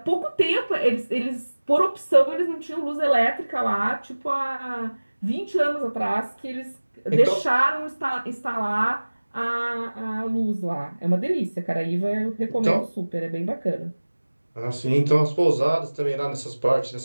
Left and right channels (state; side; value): inverted; both; correlation -1.00